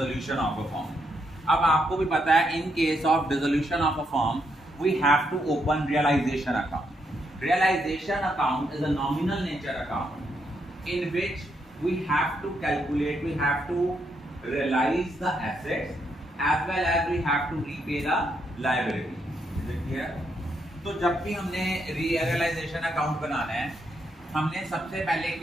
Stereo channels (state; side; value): normal; both; correlation 0.78